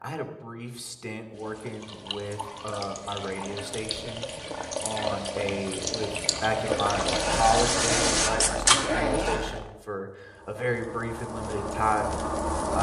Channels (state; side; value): identical; both; correlation 1.00